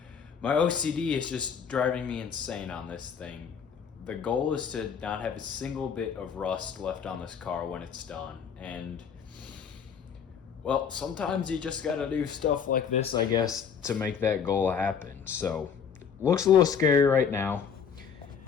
my OCD is just driving me insane on this thing. The goal is to not have a single bit of rust left on this car when it's done, and well, sometimes you just gotta do stuff like this, I guess, to make that goal happen. So, looks a little scary right now.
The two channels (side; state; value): right; quieter; 7.0 dB